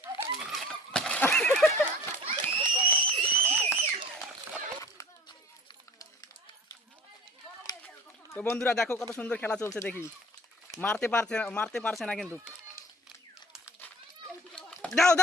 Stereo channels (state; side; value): normal; both; correlation 0.46